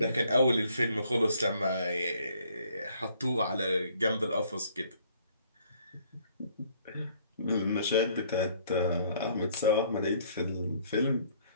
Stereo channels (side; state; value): both; inverted; correlation -0.62